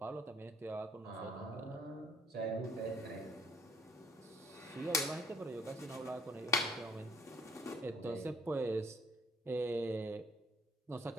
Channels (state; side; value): normal; both; correlation 0.62